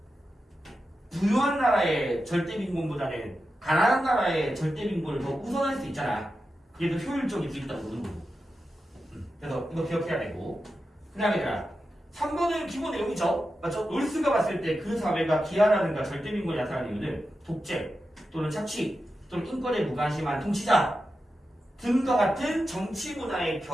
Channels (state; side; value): normal; both; correlation 0.90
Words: 부유한 나라의 절대 빈곤보다는 가난한 나라의 절대 빈곤을 더 우선할 수 있잖아. 그게 더 효율적일 수 있다고 보는 거고. 그래서 이거 기억해야 되고. 그 다음에 3번은 기본 내용이죠. 맞죠? 놀스가 봤을 때 그 사회가 기아라든가 절대 빈곤이 나타나는 이유는 독재 또는 착취 또는 인권에 무관심한 통치자 등과 같은 정치 문화의